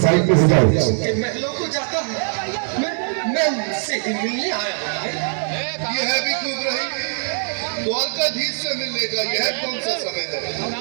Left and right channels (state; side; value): silent; left; digital silence